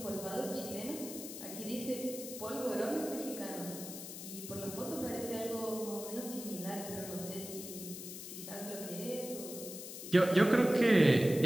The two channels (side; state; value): left; noise; hiss, 10 dB below the sound